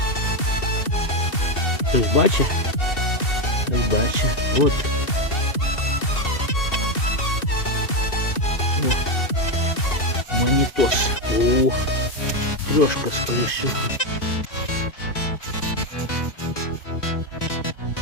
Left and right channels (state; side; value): late; right; 2.7 ms